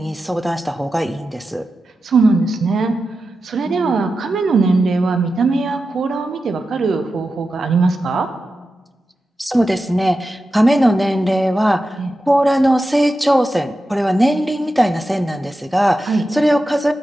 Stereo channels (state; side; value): normal; both; correlation 0.91